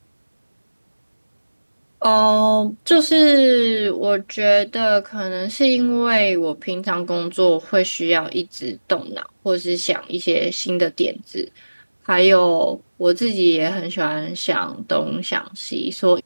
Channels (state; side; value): inverted; both; correlation -1.00